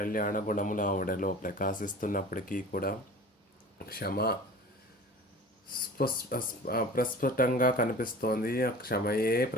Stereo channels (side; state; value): both; normal; correlation 0.40